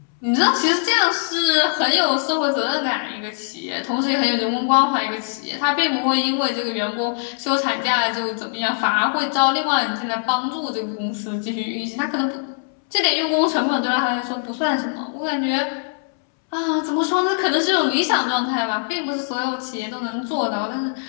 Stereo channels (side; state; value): right; silent; 65 dB below the other